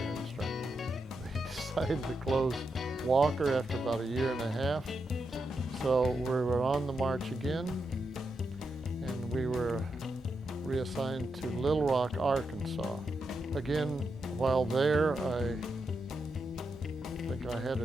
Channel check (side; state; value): both; normal; correlation 0.85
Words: instructor. They decided to close Walker after about a year and a half. So we were on the march again, and we were reassigned to Little Rock, Arkansas. Again, while there, I think I had